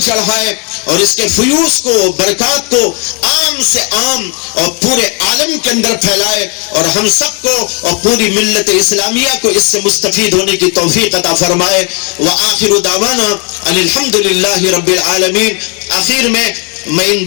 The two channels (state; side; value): quieter; right; 35.6 dB